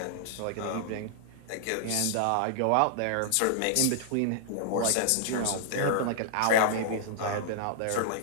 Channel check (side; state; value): both; different; correlation -0.01